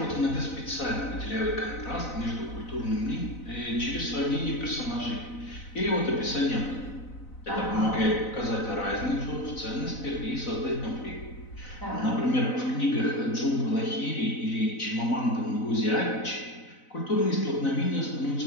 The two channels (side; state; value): right; late; 4.0 ms